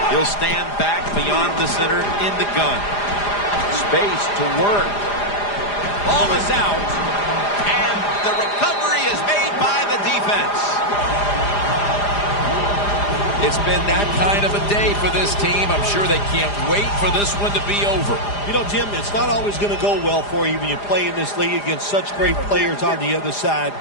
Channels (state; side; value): late; right; 4.9 ms